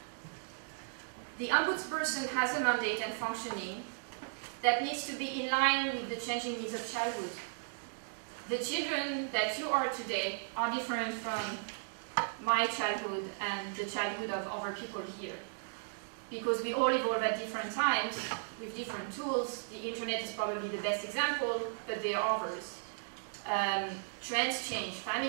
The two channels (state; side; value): silent; left; digital silence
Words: The ombudsperson has a mandate and functioning that needs to be in line with the changing needs of childhood. The children that you are today are different from my childhood and the childhood of other people here. Because we all evolve at different times with different tools. The internet is probably the best example, but there are others. Trends change,